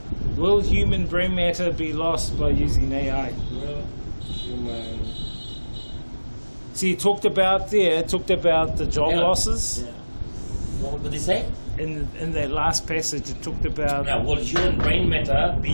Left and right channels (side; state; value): both; inverted; correlation -1.00